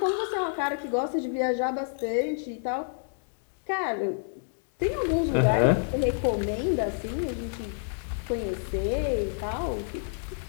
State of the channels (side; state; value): right; silent; digital silence